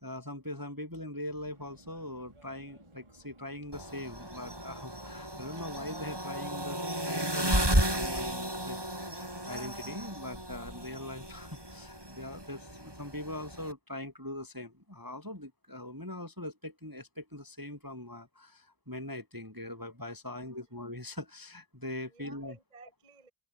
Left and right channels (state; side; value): late; left; 1.2 ms